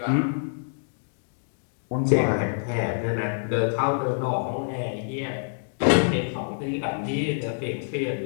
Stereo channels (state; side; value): silent; right; digital silence